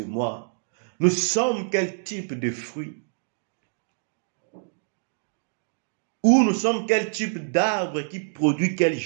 moi, nous sommes quel type de fruits? Ou nous sommes quel type d'arbre qui produit quel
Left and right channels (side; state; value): left; silent; digital silence